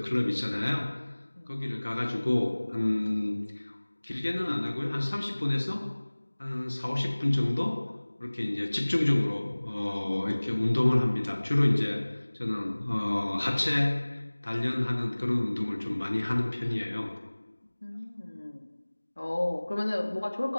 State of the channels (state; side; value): inverted; both; correlation -1.00